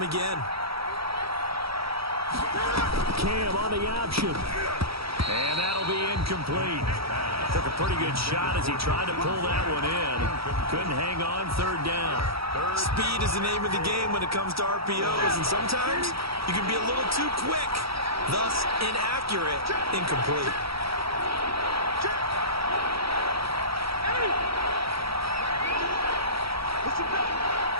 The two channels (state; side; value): late; left; 0.76 ms